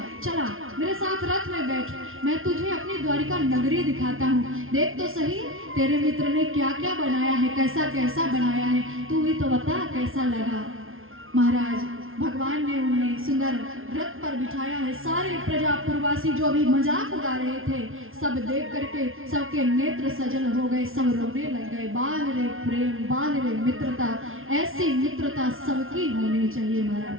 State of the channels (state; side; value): late; left; 0.60 ms